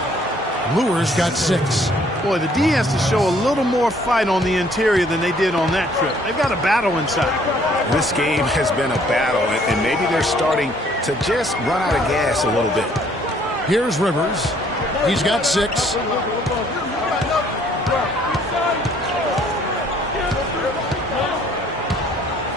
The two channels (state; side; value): normal; both; correlation 0.61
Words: Lure's got 6. Boy, the D has to show a little more fight on the interior than they did on that trip. They've got a battle inside. This game has been a battle, and maybe they're starting to just run out of gas a little bit. Here's Rivers. He's got 6.